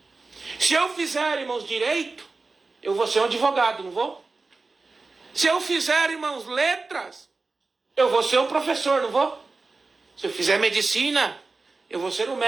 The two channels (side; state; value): left; quieter; 3.8 dB